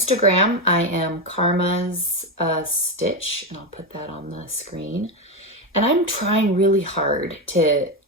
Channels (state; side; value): normal; both; correlation 0.11